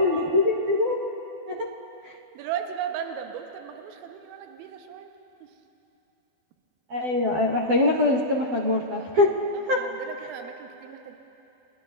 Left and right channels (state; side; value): late; left; 12 ms